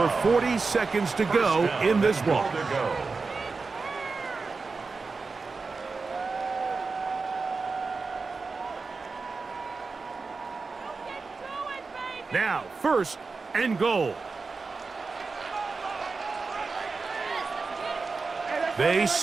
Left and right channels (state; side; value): quieter; left; 4.3 dB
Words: 40 seconds to go in this one. Now, 1st and goal. They